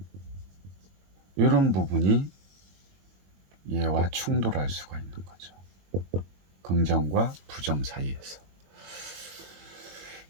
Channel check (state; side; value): late; left; 21 ms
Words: 이런 부분이 얘와 충돌할 수가 있는 거죠. 긍정과 부정 사이에서.